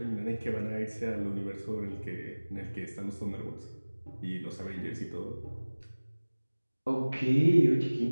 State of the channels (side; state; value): both; inverted; correlation -1.00